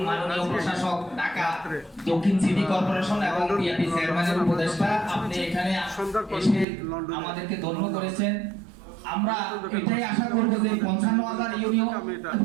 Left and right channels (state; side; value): drops out; left; at 6.7 s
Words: মাননীয় প্রশাসক ঢাকা দক্ষিণ সিটি কর্পোরেশন এবং বিএনপি চেয়ারম্যানের উপদেষ্টা, আপনি এখানে এসে আমাদেরকে ধন্য করেছেন। আমরা এটাই আশা করব যে 55,000